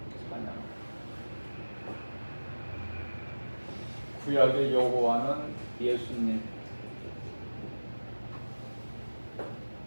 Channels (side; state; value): both; inverted; correlation -1.00